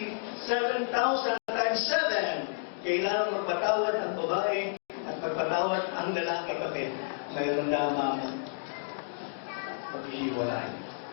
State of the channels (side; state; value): right; silent; digital silence